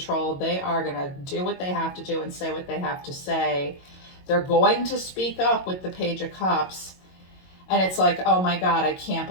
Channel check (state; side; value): late; right; 22 ms